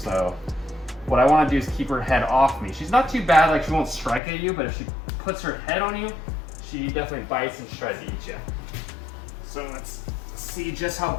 what I want to do is keep her head off me. She's not too bad, like she won't strike at you, but if she puts her head on you, she definitely bites and tries to eat you. So let's see just how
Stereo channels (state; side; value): drops out; right; at 4.2 s